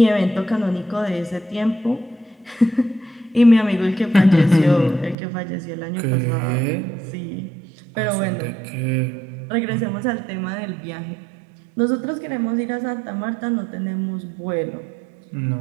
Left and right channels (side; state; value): left; drops out; at 5.2 s